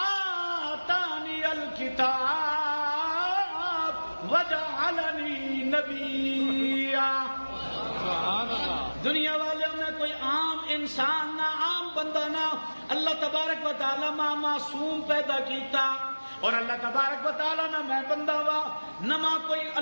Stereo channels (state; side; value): inverted; both; correlation -1.00